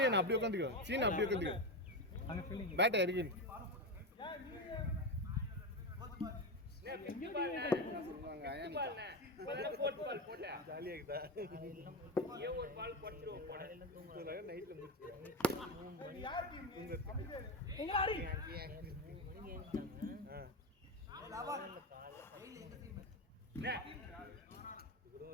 என்ன அப்படியே உட்கார்ந்துக்கோ. சீனா அப்படியே உட்கார்ந்துக்கோ. அங்க ஃபீலிங் பேட் இருக்கு. ஜாலியா இருக்குதா? ஒரு பால் போட்டுருவோம் போட. நைட்ல முடிச்சு. யார் டீம்? எங்க ஆடி? லவன். டெய்லி எங்க டீம்?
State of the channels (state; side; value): normal; both; correlation 0.15